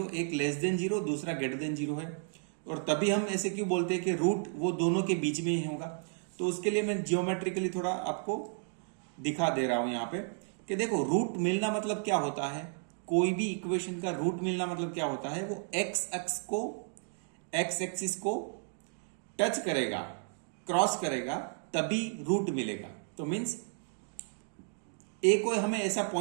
एक लेस देन 0 दूसरा ग्रेटर देन 0 है, और तभी हम ऐसे क्यों बोलते हैं कि रूट वो दोनों के बीच में ही होगा, तो उसके लिए मैं जियोमेट्रिकली थोड़ा आपको दिखा दे रहा हूं यहां पे कि देखो रूट मिलना मतलब क्या होता है। कोई भी इक्वेशन का रूट मिलना मतलब क्या होता है, वो एक्स एक्सिस को टच करेगा, क्रॉस करेगा, तभी रूट मिलेगा। तो मीन्स ए को हमें ऐसा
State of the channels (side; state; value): left; silent; 56 dB below the other